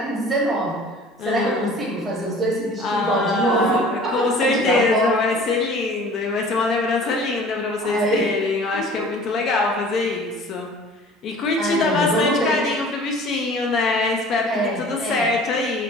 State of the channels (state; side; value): normal; both; correlation 0.46